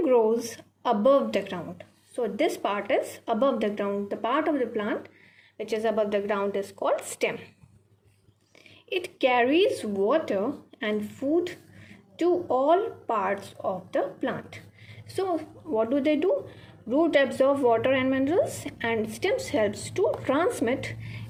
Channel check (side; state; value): both; identical; correlation 1.00